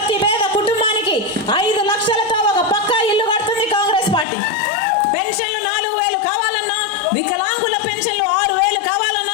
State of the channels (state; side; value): drops out; right; at 4.2 s